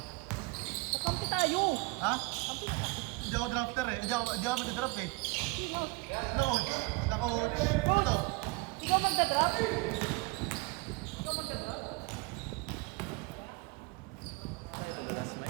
Kakampi tayo! Ha? Hindi ako drafter eh. Hindi ako mag-draft eh. Sino? Sila coach. Sila coach. Ito. Ikaw magda-draft? Ikaw magda-draft?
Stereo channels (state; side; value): quieter; left; 25.2 dB